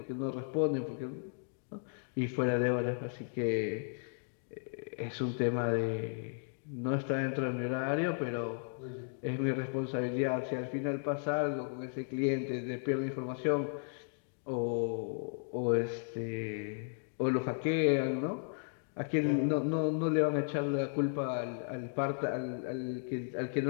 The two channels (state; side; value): silent; right; digital silence